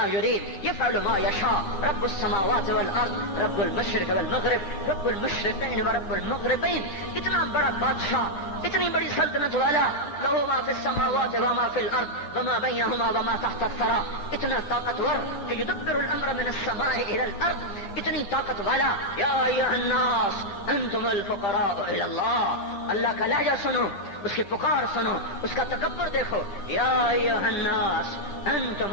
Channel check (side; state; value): right; late; 10 ms